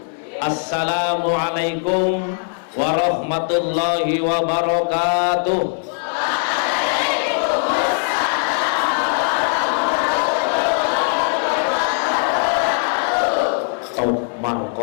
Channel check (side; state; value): right; silent; 66 dB below the other